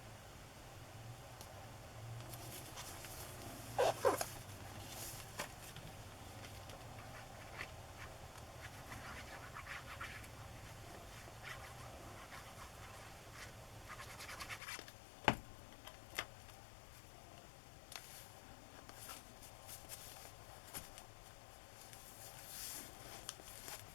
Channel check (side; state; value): right; drops out; at 14.6 s